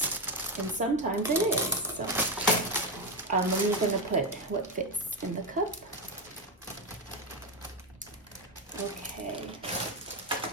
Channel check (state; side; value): normal; both; correlation 0.09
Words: and sometimes it is. So I'm only going to put what fits in the cup. Okay.